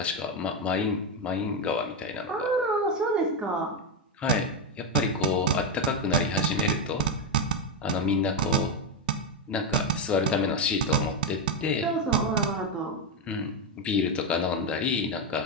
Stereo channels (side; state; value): both; normal; correlation 0.07